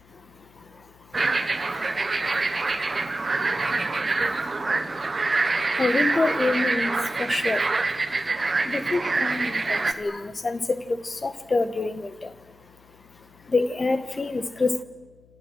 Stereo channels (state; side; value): noise; left; hum, 28 dB below the sound